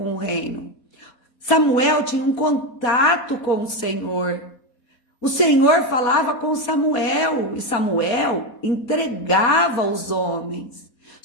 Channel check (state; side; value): late; right; 4.2 ms